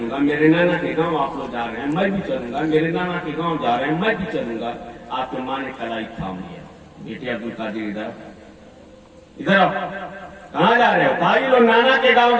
मेरे नाना के गांव आप लोग जा रहे हैं, मैं भी चलूंगा, मेरे नाना के गांव जा रहे हैं, मैं भी चलूंगा। आपके माँ ने कलाई थाम लिया, बेटे अब्दुल कादिर इधर इधर आओ। कहाँ जा रहे हो? भाई लोग नाना के गांव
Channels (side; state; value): both; identical; correlation 1.00